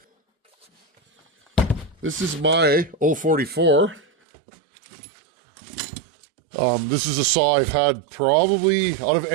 this is my 044. This is a saw I've had probably out of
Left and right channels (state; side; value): drops out; left; at 4.0 s